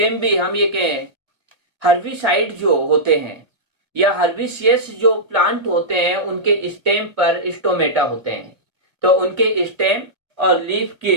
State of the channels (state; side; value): late; left; 2.0 ms